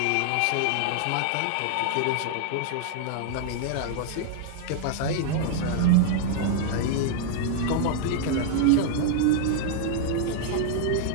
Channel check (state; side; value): different; both; correlation -0.01